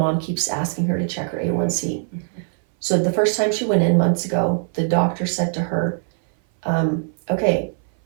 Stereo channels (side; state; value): left; silent; 59 dB below the other